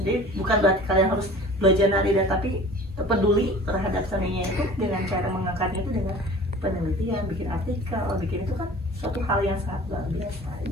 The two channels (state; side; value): normal; both; correlation 0.43